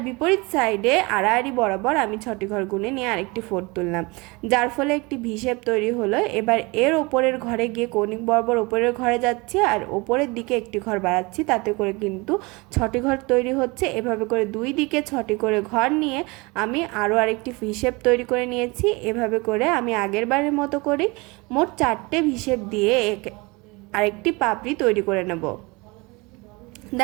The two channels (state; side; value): quieter; left; 25.7 dB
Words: বিপরীত সাইডে আড়াআড়ি বরাবর আমি 6টি ঘর গুনে নিয়ে আরেকটি ফোর তুললাম, যার ফলে একটি হিসেব তৈরি হলো। এবার এর ওপরের ঘরে গিয়ে কৌণিক বরাবর ওপরের ঘরে যাচ্ছি আর ওপরের দিকে একটি ঘর বাড়াচ্ছি, তাতে করে কিন্তু 6টি ঘর তৈরি হচ্ছে। এভাবে করে দুই দিকে 6টি করে ঘর নিয়ে আমি আরও আরেকটি হিসেব তৈরি করে নিয়েছি। এভাবে করে আমি আগের বারের মতো করি মোট 4টে হিসেব দিয়ে আরেকটি পাপড়ি তৈরি করে নেব।